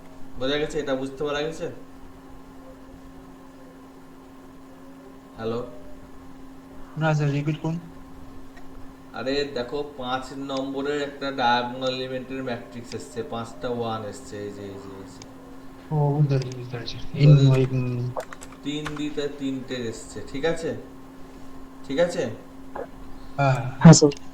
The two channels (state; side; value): identical; both; correlation 1.00